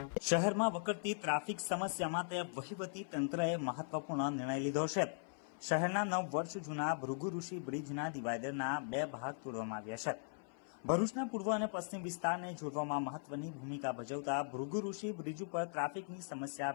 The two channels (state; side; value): silent; right; 51 dB below the other